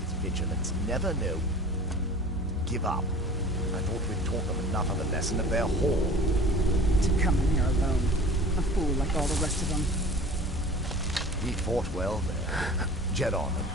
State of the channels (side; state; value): both; normal; correlation 0.43